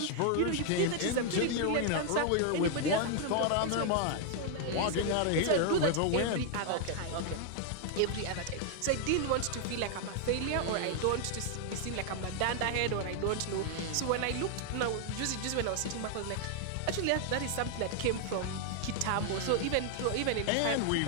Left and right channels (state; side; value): different; both; correlation 0.00